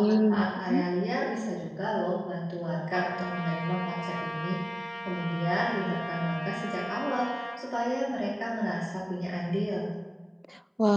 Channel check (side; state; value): both; identical; correlation 1.00